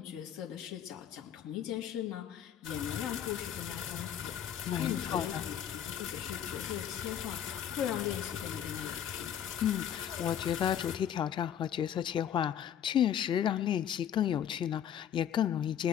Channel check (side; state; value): right; quieter; 9.6 dB